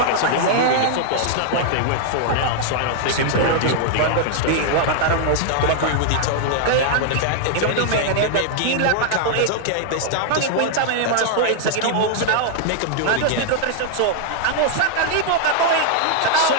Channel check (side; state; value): both; different; correlation -0.01